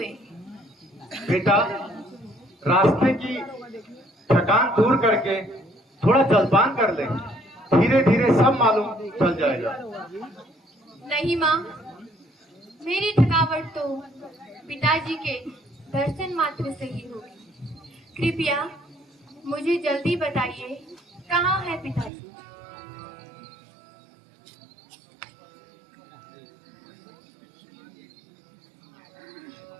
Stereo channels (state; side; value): drops out; left; at 22.1 s